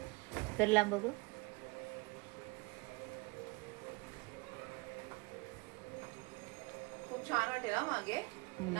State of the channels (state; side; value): quieter; left; 26.6 dB